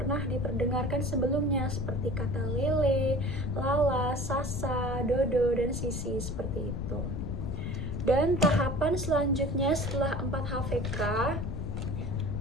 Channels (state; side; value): noise; left; rumble, 4 dB below the sound